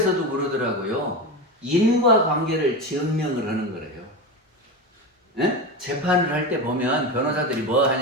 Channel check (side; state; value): both; normal; correlation 0.20